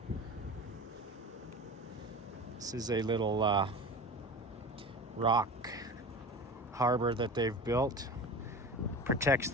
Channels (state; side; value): normal; both; correlation 0.33